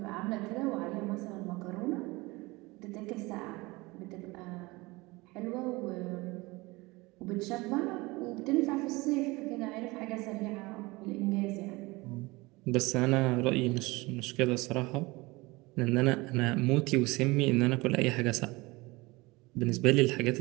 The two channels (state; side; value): quieter; left; 22.8 dB